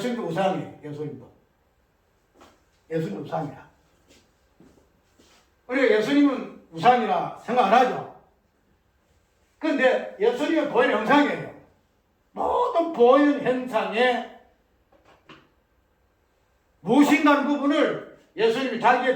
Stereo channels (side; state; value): both; identical; correlation 1.00